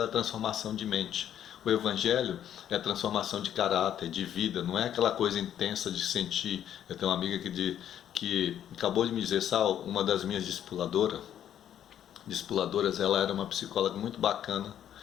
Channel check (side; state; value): right; quieter; 10.3 dB